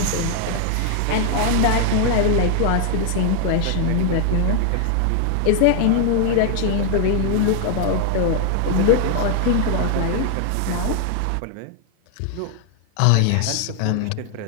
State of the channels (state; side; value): different; both; correlation 0.00